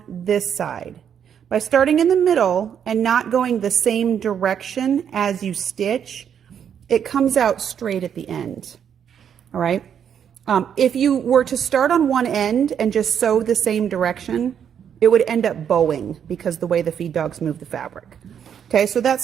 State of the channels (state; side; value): quieter; left; 8.4 dB